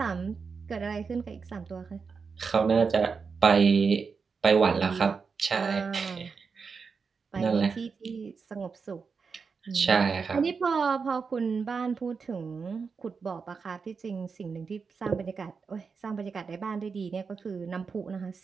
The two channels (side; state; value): left; quieter; 5.3 dB